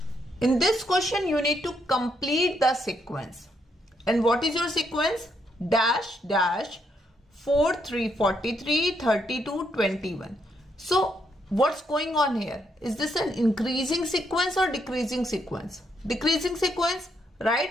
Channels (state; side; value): normal; both; correlation 0.76